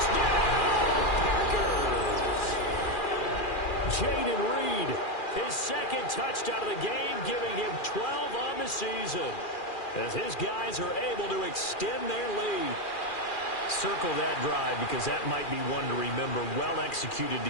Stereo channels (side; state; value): right; late; 2.4 ms